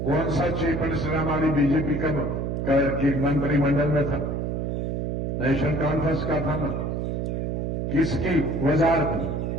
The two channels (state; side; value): noise; right; hum, 1 dB below the sound